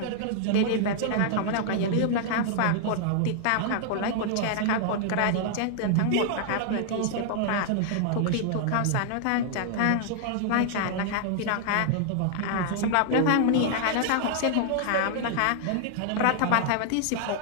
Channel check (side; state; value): both; different; correlation -0.01